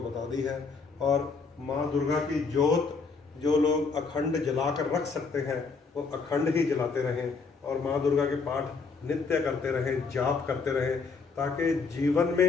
बता दी है। और माँ दुर्गा की जोत जो लोग अखंड जलाकर रख सकते हैं वो अखंड ही जलाते रहें, और माँ दुर्गा के पाठ नित्य करते रहें, जाप करते रहें, ताकि जीवन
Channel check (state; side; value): quieter; right; 4.7 dB